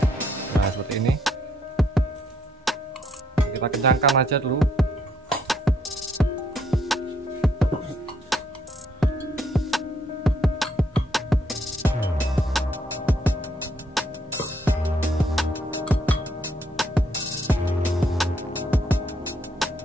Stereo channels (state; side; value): normal; both; correlation 0.71